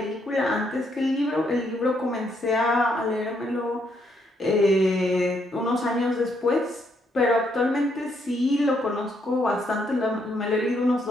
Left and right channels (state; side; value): normal; both; correlation 0.74